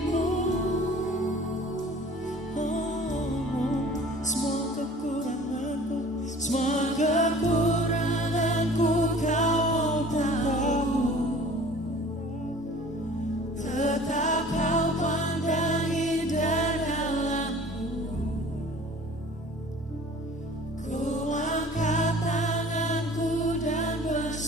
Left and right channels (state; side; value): normal; both; correlation 0.47